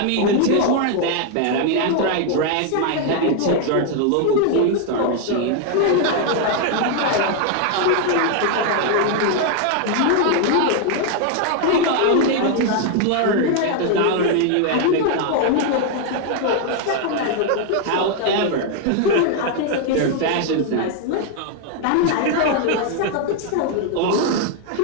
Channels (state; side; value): different; both; correlation 0.00